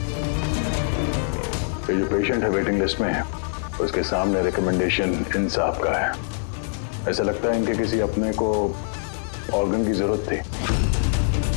ये जो पेशेंट है वेटिंग लिस्ट में है, उसके सामने रिकमेंडेशन इंसाफ का है। ऐसा लगता है इनके किसी अपने को ऑर्गन की जरूरत थी।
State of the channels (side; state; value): right; silent; digital silence